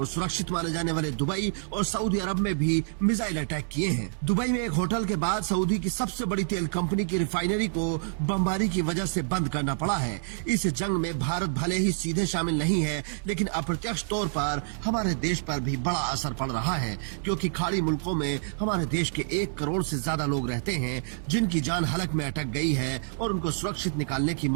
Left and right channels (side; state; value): left; silent; digital silence